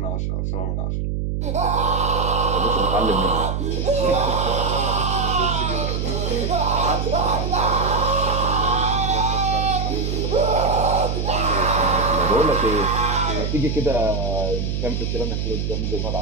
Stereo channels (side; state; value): right; noise; hum, 1 dB below the sound